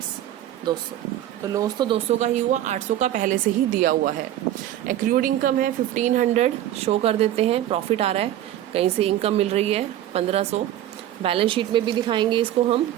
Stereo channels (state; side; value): quieter; left; 12.6 dB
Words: 200, तो लॉस तो 200 का ही हुआ, 800 का पहले से ही दिया हुआ है। एक्रूड इनकम है 1500, शो कर देते हैं। प्रॉफिट आ रहा है, कहीं से इनकम मिल रही है 1500। बैलेंस शीट में भी दिखाएंगे इसको हम,